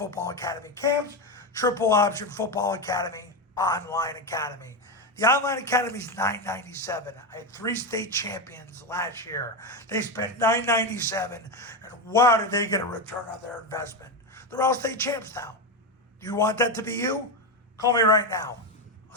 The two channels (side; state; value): both; normal; correlation 0.12